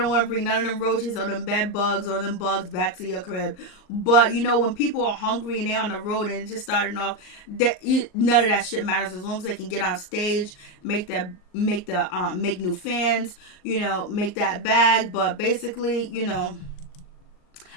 want to bring none of them roaches or them bed bugs or them bugs back to your crib. But, when people are hungry and they're on the road and it's just starting off, none of that shit matters as long as they can get on stage, make new fans, make that bag. But basically,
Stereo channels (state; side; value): late; right; 39 ms